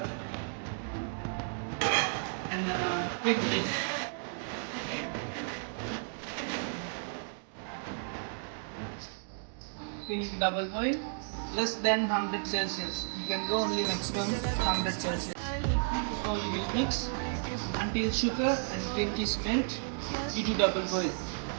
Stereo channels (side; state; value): left; silent; 56 dB below the other